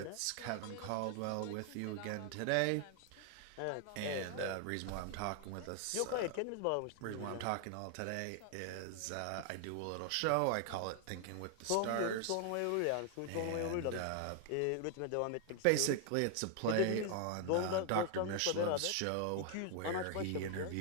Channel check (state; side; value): different; both; correlation 0.00